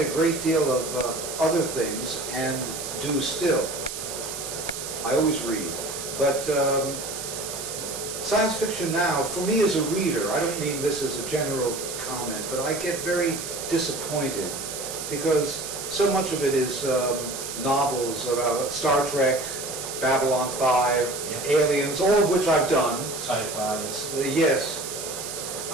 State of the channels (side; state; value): right; noise; hiss, 7 dB below the sound